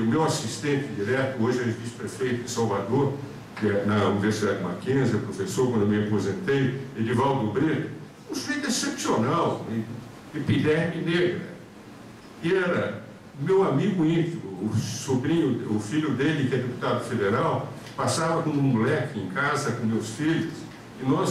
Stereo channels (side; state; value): both; identical; correlation 1.00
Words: meu assistente direto, hoje é vice-prefeito de Salvador, que é na Universidade Mackenzie, professor, quando eu me aposentei, Edivaldo Breda, um sujeito excepcional, epiderme negra, e era meu amigo íntimo, o sobrinho, o filho dele, que é deputado federal, passava como um moleque em casa com meus filhos, e